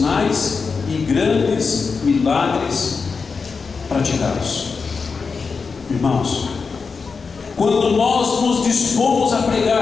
e grandes milagres praticados. Irmãos, quando nós nos dispomos a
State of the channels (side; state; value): right; quieter; 5.0 dB